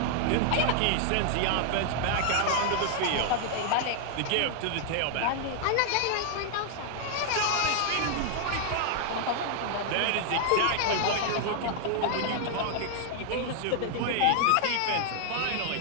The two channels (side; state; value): both; different; correlation 0.00